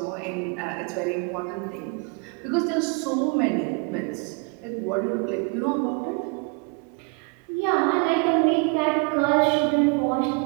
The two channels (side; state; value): left; quieter; 32.7 dB